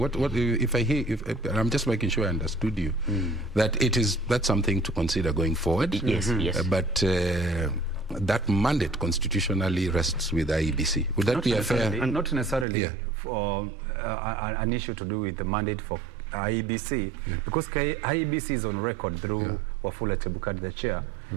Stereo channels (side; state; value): left; drops out; at 12.7 s